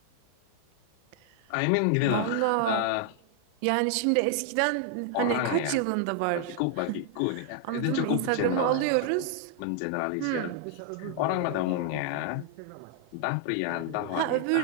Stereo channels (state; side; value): different; both; correlation 0.00